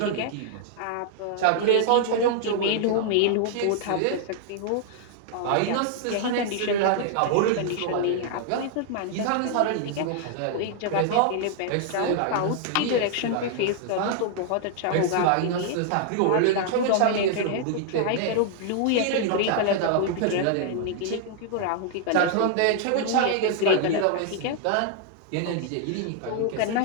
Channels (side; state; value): both; different; correlation 0.00